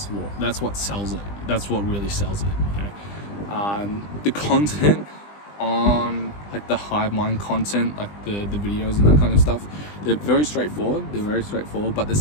what sells it. That's what really sells it, you know. The content on like the Hivemind content, like the videos and that kind of stuff, they're very straightforward, but there's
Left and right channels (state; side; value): late; right; 20 ms